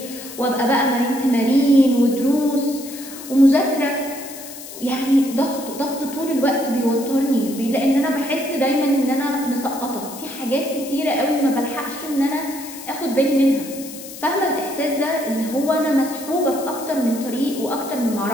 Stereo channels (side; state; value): left; noise; hiss, 13 dB below the sound